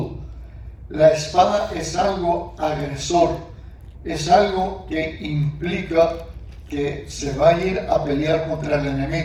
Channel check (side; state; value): both; identical; correlation 1.00